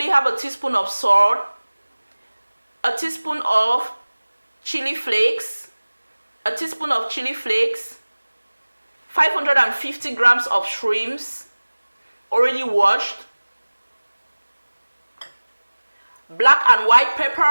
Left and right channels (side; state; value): both; inverted; correlation -1.00